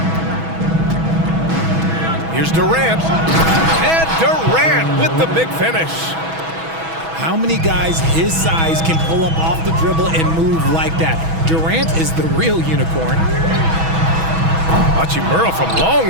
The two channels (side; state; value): left; late; 6.1 ms